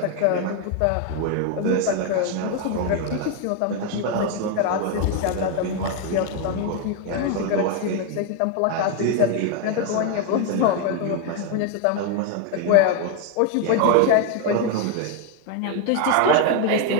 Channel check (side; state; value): both; different; correlation 0.01